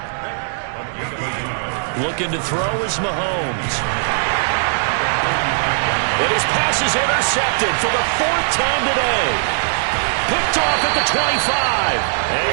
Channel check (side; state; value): left; silent; digital silence